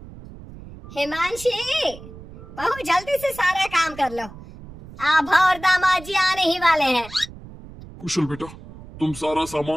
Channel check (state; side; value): noise; right; rumble, 17 dB below the sound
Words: हिमांशी, बहुत जल्दी से सारा काम कर लो। आभा और दामाद जी आने ही वाले हैं। कुशल बेटा, तुम सारा